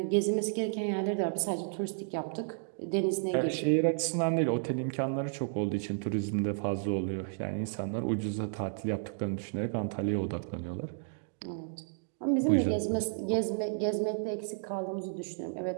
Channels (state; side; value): silent; left; digital silence